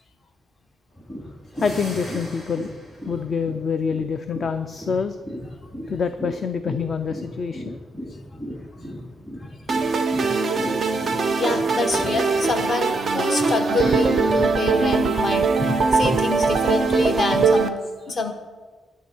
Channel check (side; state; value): both; normal; correlation 0.76